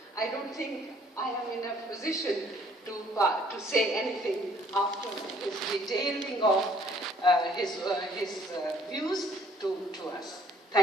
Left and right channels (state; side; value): normal; both; correlation 0.61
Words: I don't think I am in a position to say anything after his detailing of his views to us.